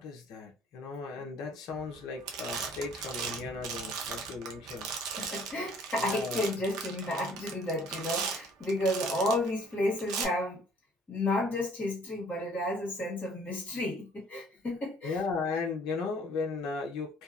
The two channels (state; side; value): normal; both; correlation 0.57